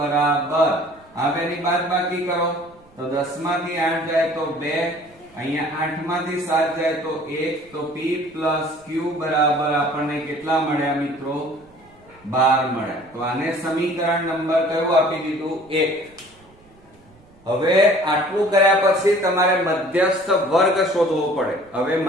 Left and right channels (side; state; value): right; noise; rumble, 29 dB below the sound